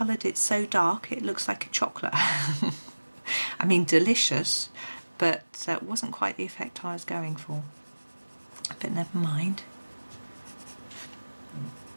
it so dark it looks like a chocolate. I mean, delicious, but it wasn't quite the effect I was going for. But never mind.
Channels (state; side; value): inverted; both; correlation -1.00